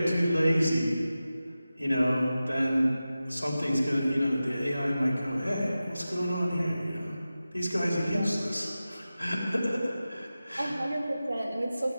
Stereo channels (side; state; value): both; inverted; correlation -0.95